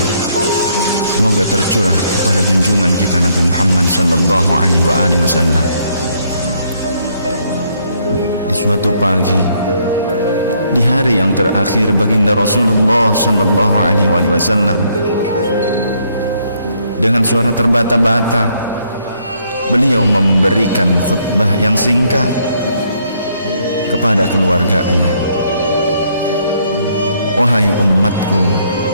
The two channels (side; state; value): both; inverted; correlation -0.70